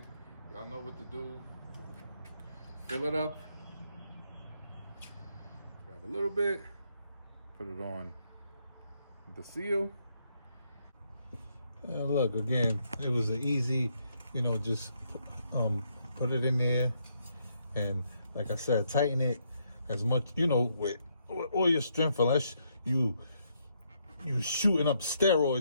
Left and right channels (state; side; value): inverted; both; correlation -0.75